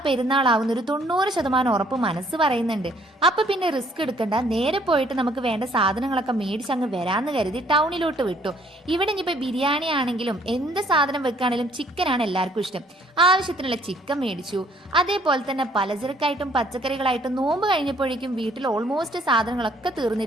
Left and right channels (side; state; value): both; normal; correlation 0.62